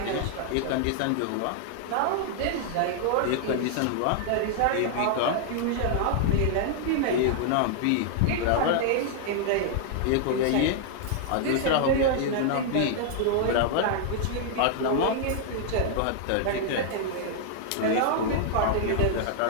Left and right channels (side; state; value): both; different; correlation -0.01